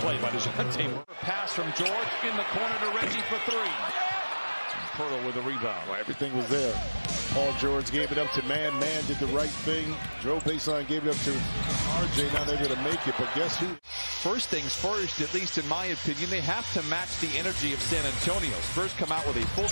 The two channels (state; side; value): inverted; both; correlation -1.00